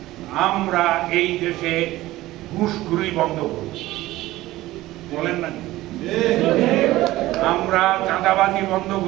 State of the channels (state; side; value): quieter; left; 16.9 dB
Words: আমরা এই দেশে ঘুষখুরি বন্ধ করব। বলেন না? আমরা চাঁদাবাজি বন্ধ